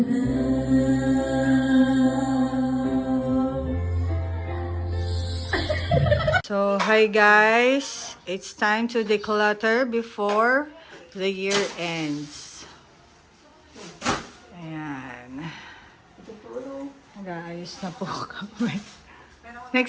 hi guys. It's time to declutter before the year ends. Ayan. Nag-aayos na po kami.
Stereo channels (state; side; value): identical; both; correlation 1.00